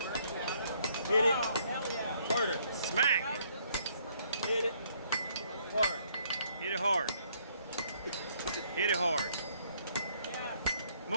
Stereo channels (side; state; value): both; inverted; correlation -0.67